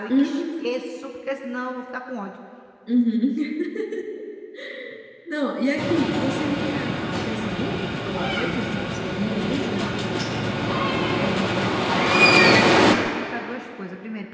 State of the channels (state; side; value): identical; both; correlation 1.00